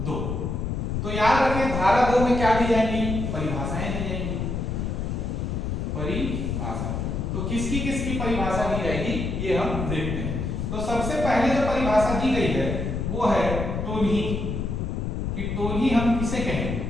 2 तो याद रखें धारा 2 में क्या दी जाएंगी, परिभाषाएं दी जाएंगी। परिभाषा तो किसकी परिभाषा दी जाएगी ये हम देखते हैं। तो सबसे पहले जो परिभाषा दी गई है वो है टोनी कि टोनी हम किसे कहेंगे,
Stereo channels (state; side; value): noise; left; rumble, 2 dB below the sound